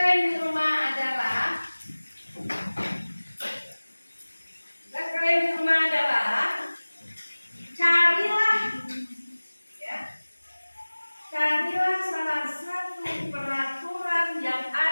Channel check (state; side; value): inverted; both; correlation -1.00